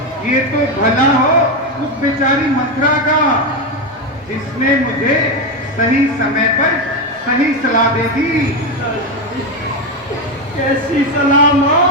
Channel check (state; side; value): normal; both; correlation 0.11